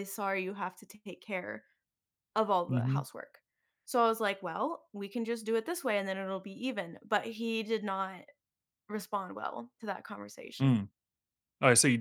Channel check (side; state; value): both; identical; correlation 1.00